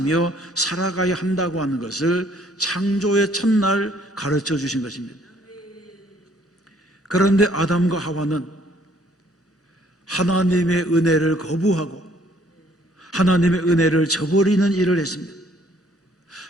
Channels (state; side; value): normal; both; correlation 0.62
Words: 살아가야 한다고 하는 것을 창조의 첫날 가르쳐 주신 것입니다. 그런데 아담과 하와는 하나님의 은혜를 거부하고 하나님의 은혜를 저버리는 일을 했습니다.